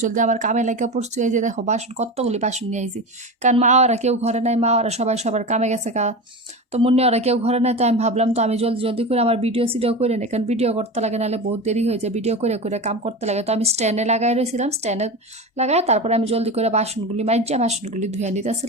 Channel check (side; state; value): both; normal; correlation 0.25